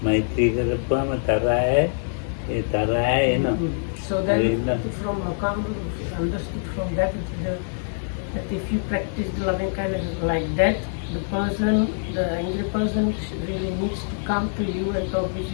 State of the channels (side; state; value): right; silent; digital silence